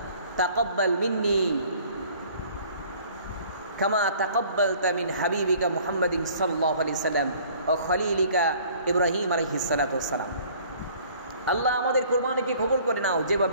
তাকাব্বাল মিন্নি কামা তাকাব্বালতা মিন হাবিবিকা মুহাম্মাদিন সাল্লাল্লাহু আলাইহি সাল্লাম ও খলিলিকা ইব্রাহিম আলাইহিস সালাতু ওয়াস সালাম। আল্লাহ আমাদের কুরবানিকে কবুল করে নাও,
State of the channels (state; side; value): inverted; both; correlation -0.54